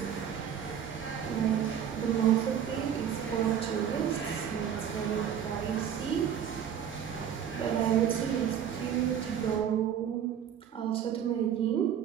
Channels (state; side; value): quieter; left; 8.8 dB